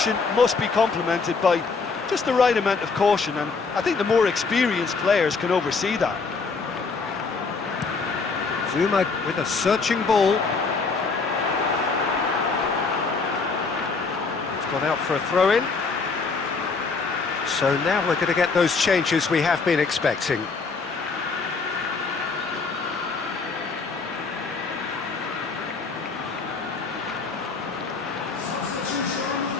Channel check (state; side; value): quieter; right; 4.6 dB